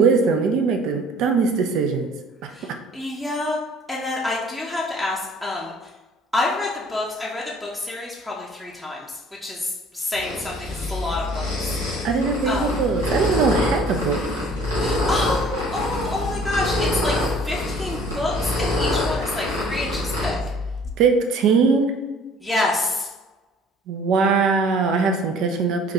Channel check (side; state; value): both; normal; correlation 0.53